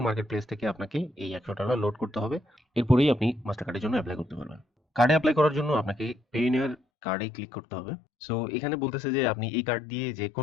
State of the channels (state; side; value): drops out; right; at 6.8 s